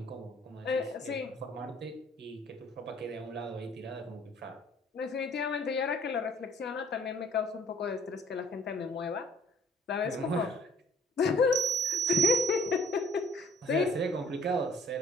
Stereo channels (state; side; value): normal; both; correlation 0.57